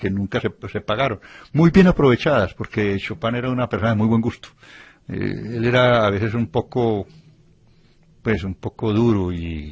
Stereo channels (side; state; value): both; identical; correlation 1.00